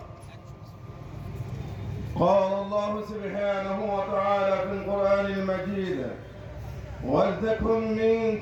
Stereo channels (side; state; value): both; identical; correlation 1.00